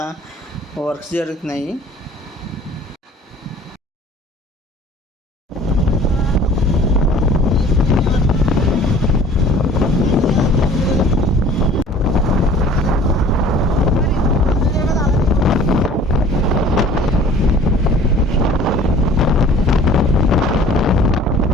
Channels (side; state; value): both; normal; correlation 0.49